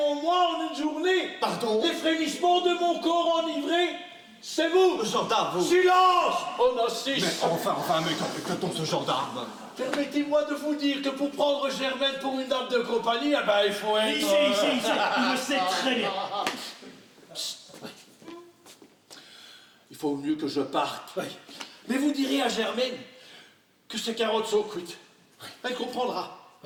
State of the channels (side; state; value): both; identical; correlation 1.00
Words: moi en une journée. Pardon? Les frémissements de mon corps enivré, c'est vous. Gendarme, vous. Silence. On assiste. Mais enfin, mais quand on ce gendarme? Permettez-moi de vous dire que pour prendre Germaine pour une dame de compagnie, eh ben, il faut être... Il le sait très bien. Il faut mieux que je parte. Oui. Mais vous direz à Germaine que ces carottes sont cuites. Elle comprendra.